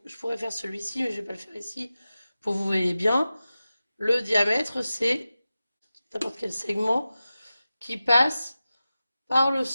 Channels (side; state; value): both; inverted; correlation -0.94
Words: je pourrais faire celui-ci, mais je ne vais pas le faire ici pour que vous voyez bien. Le diamètre, c'est n'importe quel segment qui passe par le